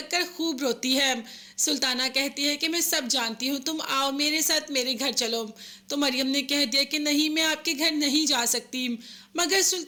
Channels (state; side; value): identical; both; correlation 1.00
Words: खूब रोती है। सुल्ताना कहती है कि मैं सब जानती हूँ, तुम आओ मेरे साथ, मेरे घर चलो। तो मरियम ने कह दिया कि नहीं, मैं आपके घर नहीं जा सकती, मगर